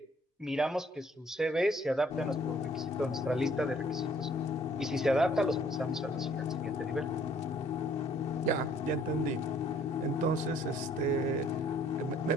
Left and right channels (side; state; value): both; normal; correlation 0.60